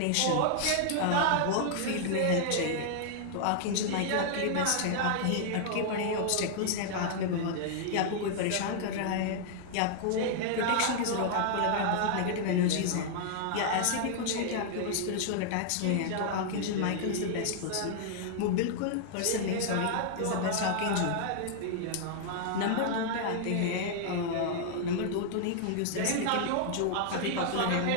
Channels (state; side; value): different; both; correlation 0.00